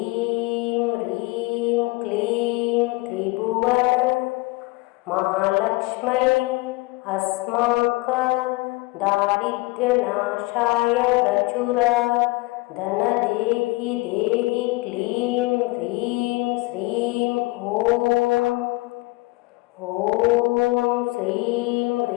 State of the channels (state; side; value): quieter; right; 23.1 dB